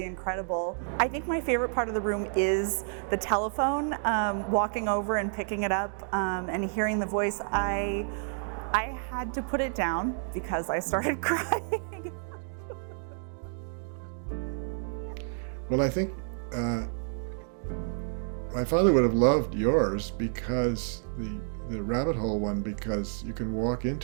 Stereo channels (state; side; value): silent; left; 58 dB below the other